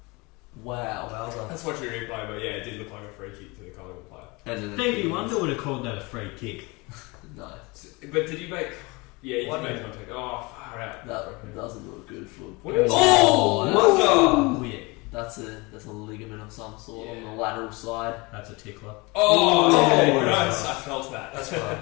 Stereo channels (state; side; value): quieter; right; 25.8 dB